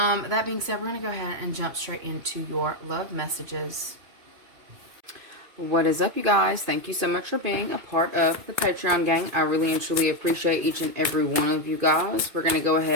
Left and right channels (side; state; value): left; late; 2.5 ms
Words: being said, we're going to go ahead and jump straight into your love messages. What is up, you guys? Thank you so much for being a part of the Patreon gang. I really and truly appreciate each and every one of you guys. We're going to go